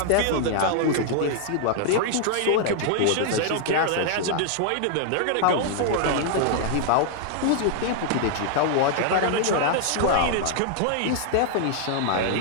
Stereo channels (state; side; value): different; both; correlation -0.01